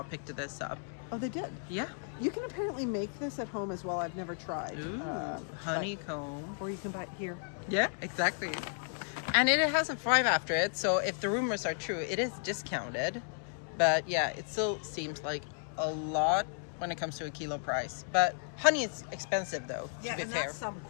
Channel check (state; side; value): silent; right; 55 dB below the other